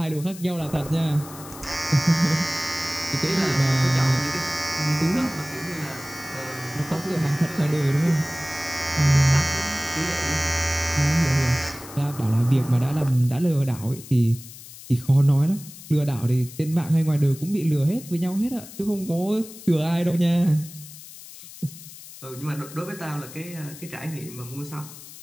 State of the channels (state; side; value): noise; left; hiss, 16 dB below the sound